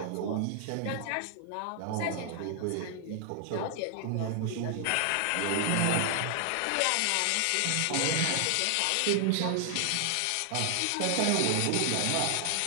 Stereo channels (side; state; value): both; different; correlation 0.00